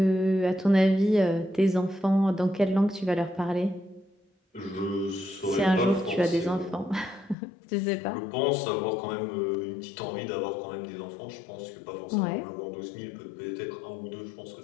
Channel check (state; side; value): drops out; right; at 7.4 s